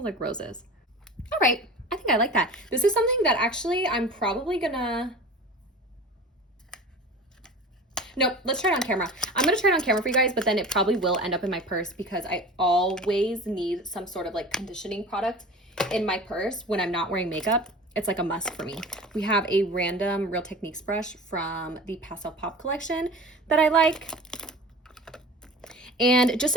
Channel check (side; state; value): both; normal; correlation 0.37